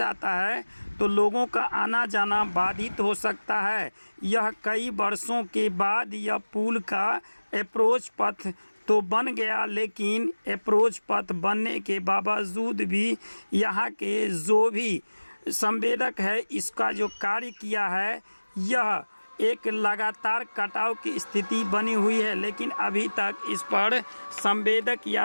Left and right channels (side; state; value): both; inverted; correlation -1.00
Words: है तो लोगों का आना जाना बाधित हो सकता है। यह कई वर्षों के बाद यह पुल का अप्रोच पथ तो बन गया, लेकिन अप्रोच पथ बनने के बावजूद भी यहाँ के जो भी संवेदक है इसका जो कार्य किया है यह एक लगातार कटाव की स्थिति बनी हुई है, लेकिन अभी तक इस पर संवेदक